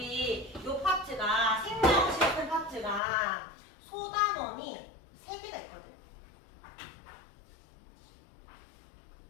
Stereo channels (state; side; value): drops out; right; at 3.0 s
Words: 요 파트가 생명실험 파트가 소단원이 3개가 있거든.